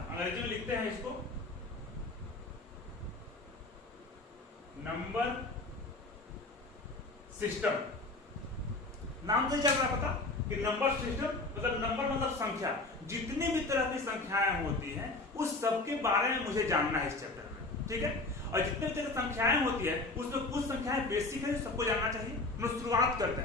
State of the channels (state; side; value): quieter; right; 3.1 dB